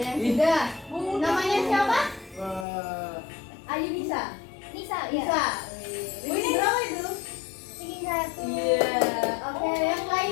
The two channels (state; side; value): drops out; right; at 2.7 s